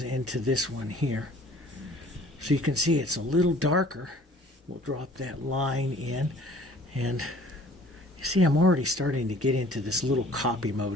into this one here. So you can see it's a little darker. We'll drop that line in, and see, I'm already starting to get into this little copy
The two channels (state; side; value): normal; both; correlation 0.52